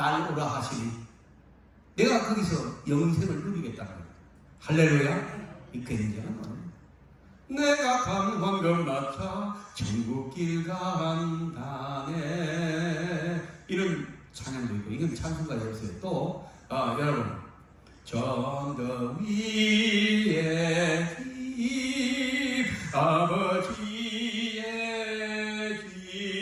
오라 하시니 내가 거기서 영생을 누리겠다는 거예요. 할렐루야. 이 굉장한 내가 강황걸 맞춰 천국길 간다네 이런 찬양도 있고 이건 찬송가였어요. 또 여러분 전거 위에 집 아버지의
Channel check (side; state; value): both; identical; correlation 1.00